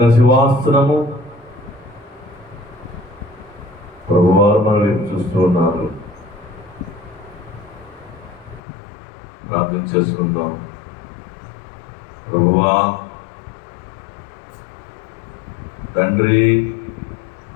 సింహాసనము, ప్రభువారు మన వైపు చూస్తూ ఉన్నారు. ప్రార్థన చేసుకుందాం. ప్రభువా, తండ్రి,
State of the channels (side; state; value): right; drops out; at 8.6 s